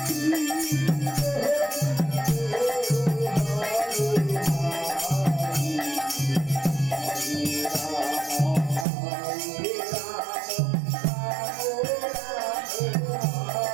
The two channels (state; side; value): drops out; left; at 8.8 s